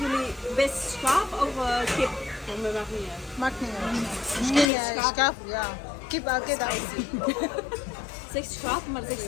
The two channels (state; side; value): drops out; right; at 4.7 s